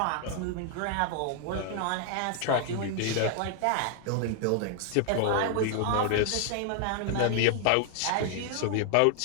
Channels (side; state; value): both; different; correlation 0.00